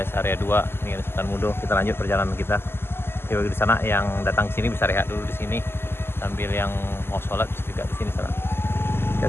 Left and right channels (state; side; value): late; right; 0.11 ms